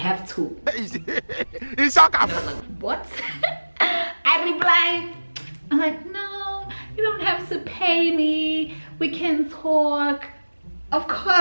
to. It's like, what? I replied, I'm like, no, you don't have to pay me. We can talk. Of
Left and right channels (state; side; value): inverted; both; correlation -1.00